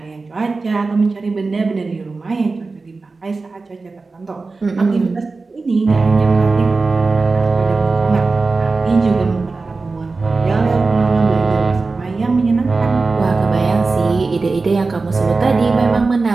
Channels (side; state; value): left; quieter; 3.9 dB